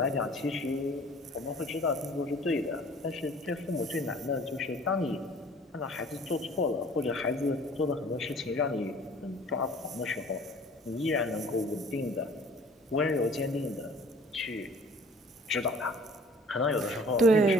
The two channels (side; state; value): both; normal; correlation 0.50